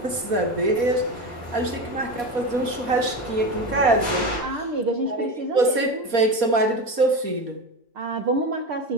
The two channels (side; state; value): left; late; 4.2 ms